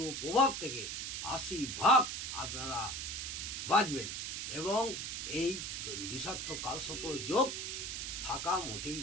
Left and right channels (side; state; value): right; noise; hiss, 4 dB below the sound